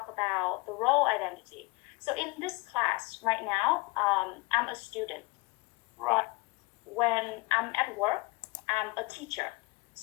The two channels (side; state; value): right; quieter; 26.3 dB